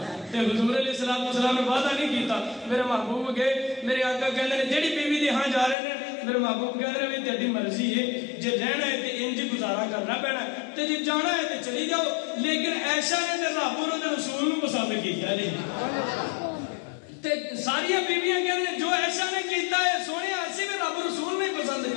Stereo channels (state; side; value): drops out; right; at 5.8 s